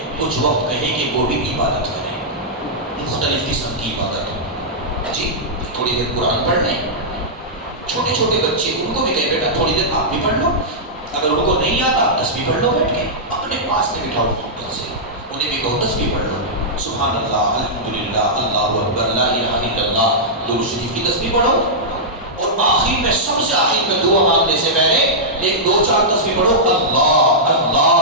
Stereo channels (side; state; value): both; normal; correlation -0.11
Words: کچھ وقت کہیں کہ وہ بھی عبادت کریں، مختلف قسم کی عبادت. جی تھوڑی دیر قرآن پڑھ لیں. چھوٹے چھوٹے بچے ان کو بھی کہیں بیٹا تھوڑی دیر آپ بھی پڑھ لو. اگر ان کو نہیں آتا تسبیح پڑھ لو بیٹھ کے، اپنے پاس میں بٹھاؤ محبت سے، انہیں بھی کہو تسبیح پڑھ لو. سبحان اللہ، الحمدللہ، اللہ اکبر، لا الہ الا اللہ، درود شریف کی تسبیح پڑھو. اور آخر میں سب سے آخر میں دعا مانگنے سے پہلے ایک دو چار تسبیح پڑھو. اللہ